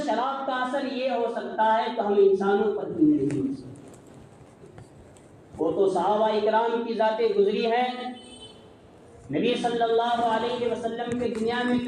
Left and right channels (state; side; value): identical; both; correlation 1.00